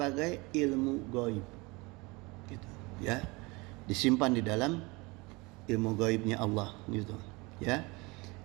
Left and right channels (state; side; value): quieter; left; 25.3 dB